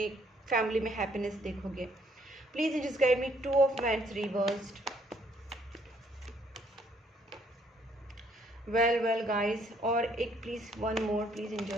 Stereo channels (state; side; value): normal; both; correlation 0.67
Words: फैमिली में हैप्पीनेस देखोगे। Please just guide me. 2 of wands reversed, well guys, और एक please one more please